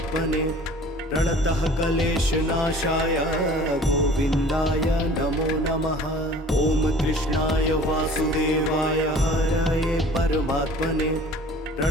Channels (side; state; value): both; normal; correlation 0.47